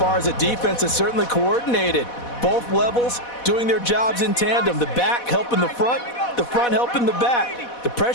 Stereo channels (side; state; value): right; late; 4.1 ms